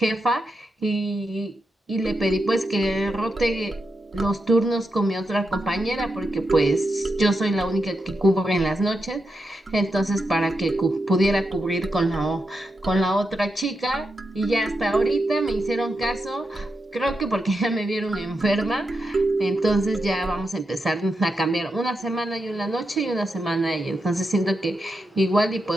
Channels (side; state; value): both; normal; correlation 0.86